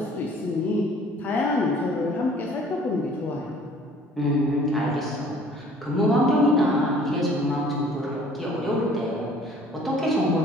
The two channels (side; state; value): both; normal; correlation 0.54